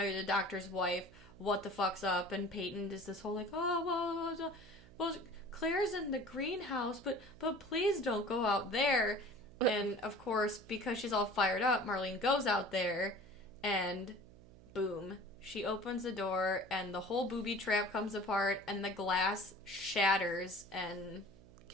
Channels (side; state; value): right; noise; hum, 22 dB below the sound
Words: you're the doctor's wife. What the fuck's up? And Peyton does this whole, like, oh, well, Claire's in the greenhouse, but please don't go out there. And, of course, because she's all fired up, Marlene goes out there, and boom. She opens the door, and the whole booby trap comes apart, and the glass shatters and...